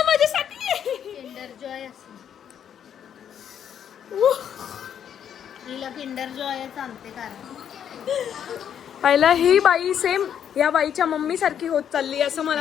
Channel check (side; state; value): right; quieter; 8.9 dB